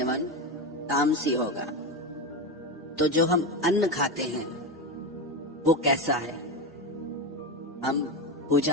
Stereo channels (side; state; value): both; normal; correlation 0.16